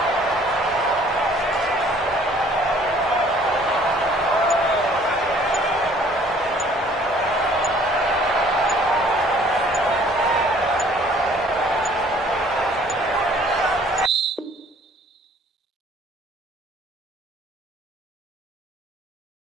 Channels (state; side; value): normal; both; correlation 0.56